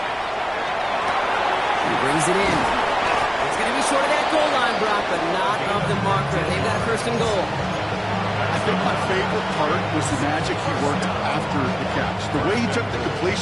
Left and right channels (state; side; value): identical; both; correlation 1.00